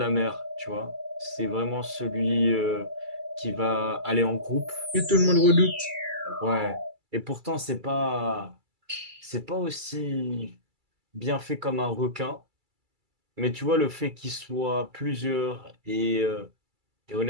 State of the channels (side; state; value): left; late; 2.3 ms